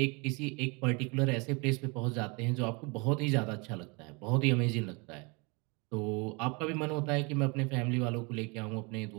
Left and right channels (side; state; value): left; quieter; 29.8 dB